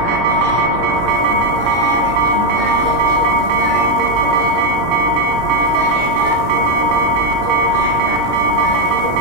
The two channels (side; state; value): left; late; 11 ms